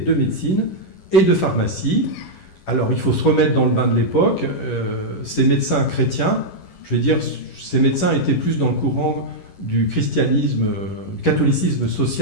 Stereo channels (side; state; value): right; late; 11 ms